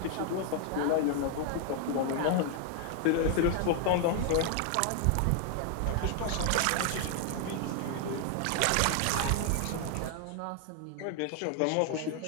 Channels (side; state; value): both; different; correlation 0.00